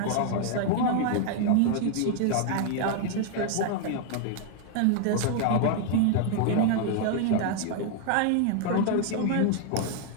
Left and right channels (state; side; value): different; both; correlation 0.00